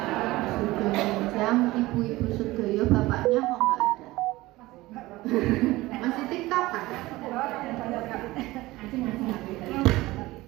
Sugeng ibu-ibu sedaya, bapaknya kok nggak ada? Masih TikTok kan?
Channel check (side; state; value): left; quieter; 19.0 dB